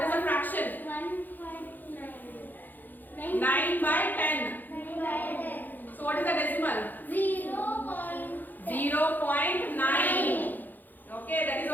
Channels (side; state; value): right; late; 0.086 ms